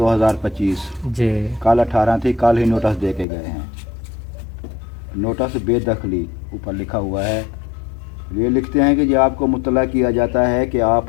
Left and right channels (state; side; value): drops out; right; at 3.2 s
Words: जी कल 18 थी, कल ही नोटिस दे के गए हैं। नोटिस बेदखली ऊपर लिखा हुआ है। ये लिखते हैं कि ये आपको मुतला किया जाता है कि